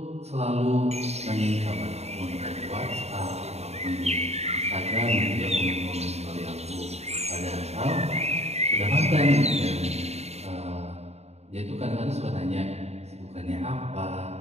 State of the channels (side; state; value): left; late; 0.31 ms